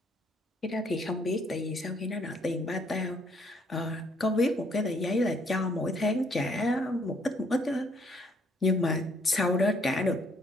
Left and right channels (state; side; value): normal; both; correlation 0.67